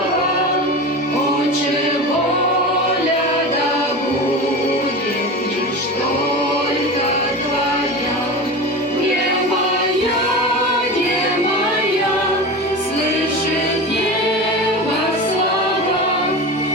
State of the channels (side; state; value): both; normal; correlation 0.28